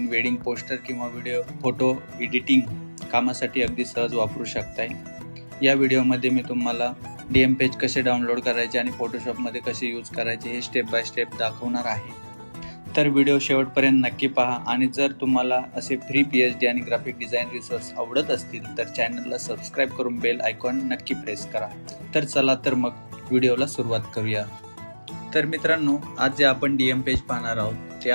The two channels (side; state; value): both; inverted; correlation -1.00